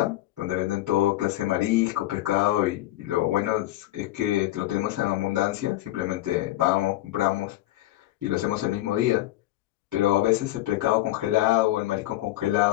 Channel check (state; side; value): quieter; right; 15.9 dB